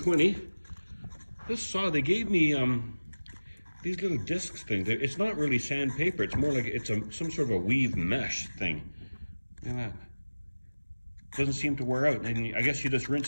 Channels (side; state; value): both; inverted; correlation -1.00